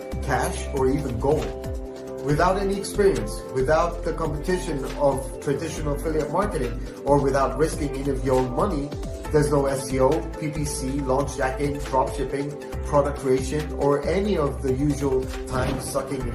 cash, or even gold. Without any experience, without the competition of traditional affiliate marketing, or without risking any of your own money, there's no SEO, PPC, launch jacking, dropshipping, product creation, or any of the usual time-sucking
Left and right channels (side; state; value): both; identical; correlation 1.00